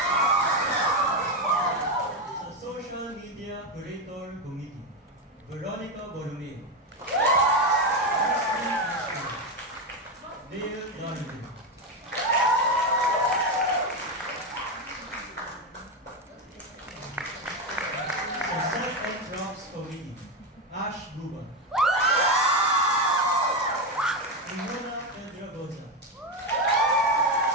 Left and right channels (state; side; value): normal; both; correlation 0.11